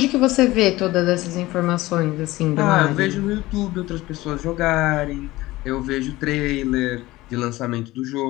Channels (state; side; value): quieter; right; 18.5 dB